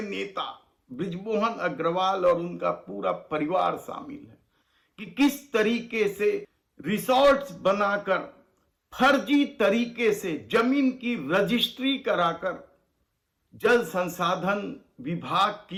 नेता बृजमोहन अग्रवाल और उनका पूरा परिवार शामिल है कि किस तरीके से रिसोर्ट्स बनाकर फर्जी तरीके से जमीन की रजिस्ट्री कराकर जल संसाधन विभाग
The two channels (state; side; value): identical; both; correlation 1.00